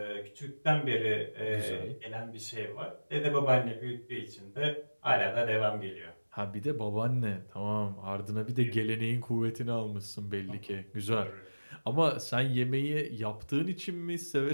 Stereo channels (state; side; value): inverted; both; correlation -1.00